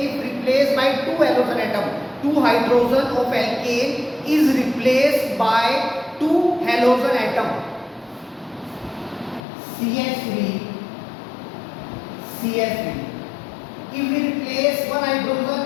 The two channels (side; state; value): right; drops out; at 9.4 s